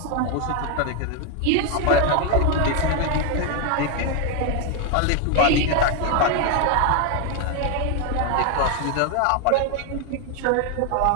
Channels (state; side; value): different; both; correlation 0.01